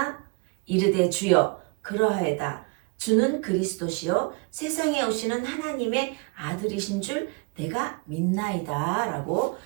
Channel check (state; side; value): quieter; left; 29.6 dB